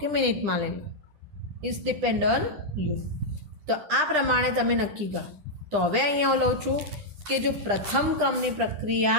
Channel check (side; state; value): left; late; 9.9 ms